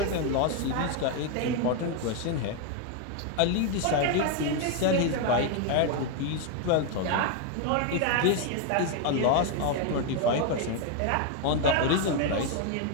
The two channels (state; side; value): different; both; correlation 0.01